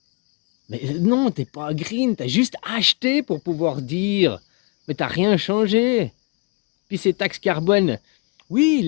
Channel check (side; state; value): right; quieter; 30.5 dB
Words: Mais non, t'es pas green, t'as juste acheté pour pouvoir dire. Mais t'as rien changé. Puis ces taxes carbone, oui, ils